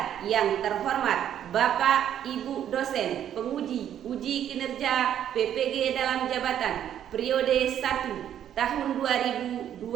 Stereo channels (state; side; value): quieter; left; 10.2 dB